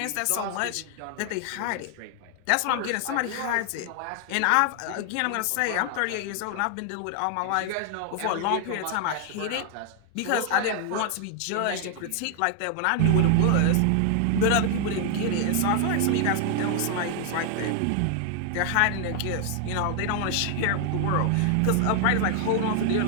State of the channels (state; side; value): different; both; correlation 0.00